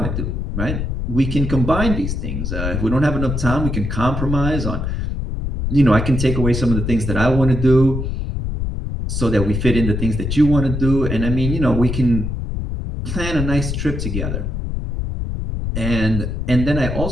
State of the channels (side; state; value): left; noise; rumble, 3 dB below the sound